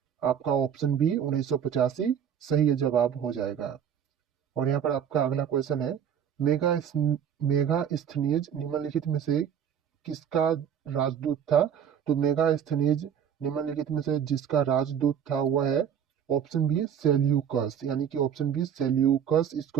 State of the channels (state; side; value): quieter; left; 8.5 dB